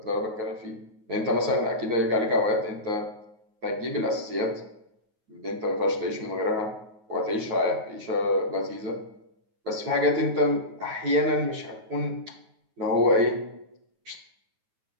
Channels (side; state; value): left; late; 9.4 ms